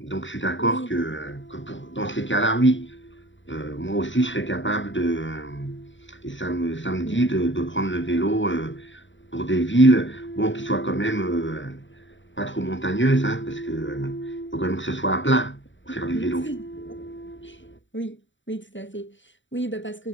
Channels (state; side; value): late; right; 0.55 ms